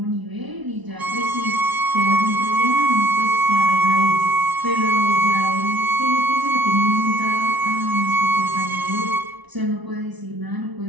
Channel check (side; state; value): left; late; 1.0 ms